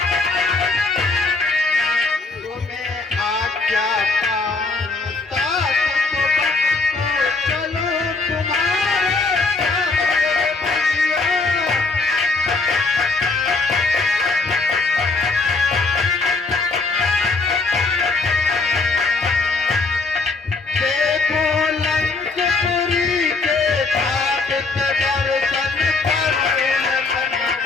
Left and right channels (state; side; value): quieter; right; 3.8 dB